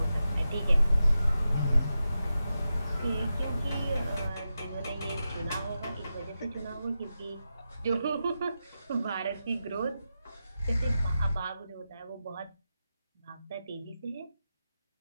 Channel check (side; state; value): both; inverted; correlation -0.90